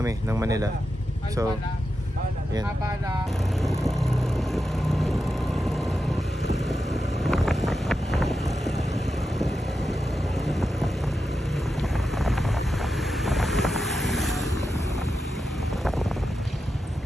ng Manila. So, yan.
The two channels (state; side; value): normal; both; correlation 0.89